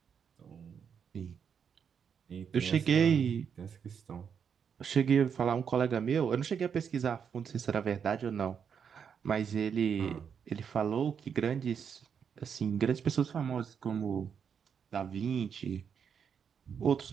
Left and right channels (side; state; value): left; quieter; 7.2 dB